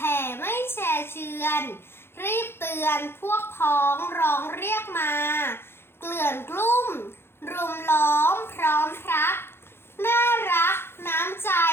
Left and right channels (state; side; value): late; right; 0.11 ms